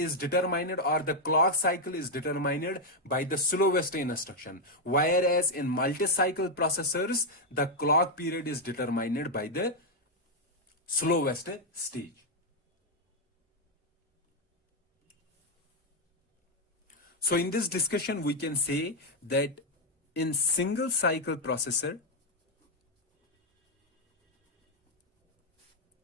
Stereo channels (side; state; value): both; normal; correlation 0.02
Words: determined, or the clock cycle is determined by the slowest instruction, whereas in multi-cycle processors, the clock period is determined by the slowest stage. So in this discussion, we can say that in single cycle processor,